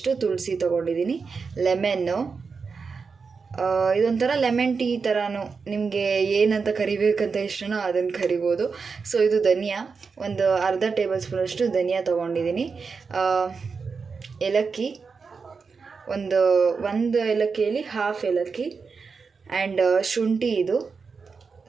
ತುಳಸಿ ತೊಗೊಂಡಿದ್ದೀನಿ. ಲೆಮನ್ನು, ಇದೊಂಥರ ಲೆಮನ್ ಟೀ ಥರನೂ, ನಿಮಗೆ ಏನಂತ ಕರಿಬೇಕಂತ ಇಷ್ಟನೋ ಅದನ್ನು ಕರಿಬೋದು. ಸೊ ಇದು ಧನಿಯಾ, ಒಂದು ಅರ್ಧ ಟೇಬಲ್ ಸ್ಪೂನಷ್ಟು ಧನಿಯಾ ತೊಗೊಂಡಿದ್ದೀನಿ. ಏಲಕ್ಕಿ, ಒಂದು ಏಲಕ್ಕಿಯಲ್ಲಿ ಹಾಫ್ ಏಲಕ್ಕಿ. ಆ್ಯಂಡ್ ಶುಂಠಿ, ಇದು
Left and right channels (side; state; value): left; quieter; 5.1 dB